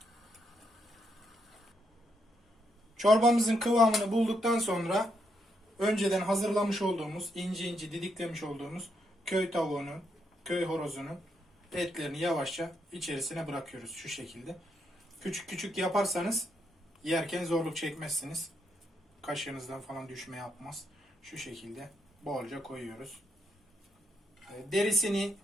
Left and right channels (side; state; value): both; normal; correlation 0.78